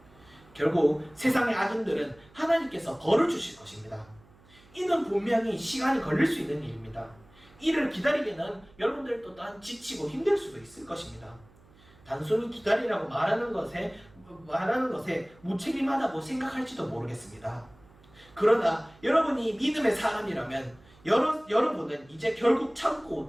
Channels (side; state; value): right; noise; hum, 27 dB below the sound